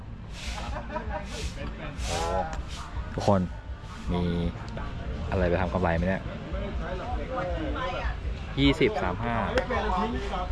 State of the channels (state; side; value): identical; both; correlation 1.00